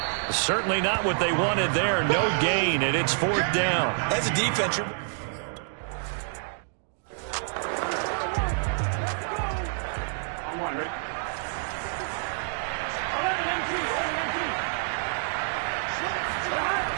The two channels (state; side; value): silent; left; digital silence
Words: Certainly not what they wanted there. No gain, and it's 4th down. As a defense,